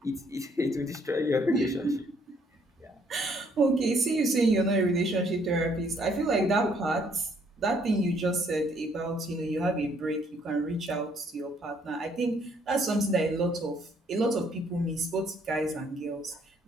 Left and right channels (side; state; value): both; normal; correlation 0.66